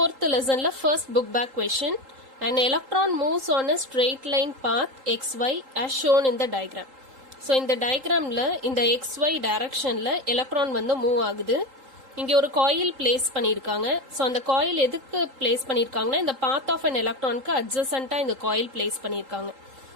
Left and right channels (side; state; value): left; late; 3.8 ms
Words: lessonல first book back question. An electron moves on a straight line path xy as shown in the diagram. So இந்த diagramல இந்த xy directionல electron வந்து move ஆகுது. இங்க ஒரு coil place பண்ணிருக்காங்க. சோ அந்த காயில் எதுக்கு பிளேஸ் பண்ணிருக்காங்கன்னா இந்த பாத் ஆஃப் an எலக்ட்ரானுக்கு அட்ஜசன்ட்டா இந்த காயில் பிளேஸ் பண்ணிருக்காங்க.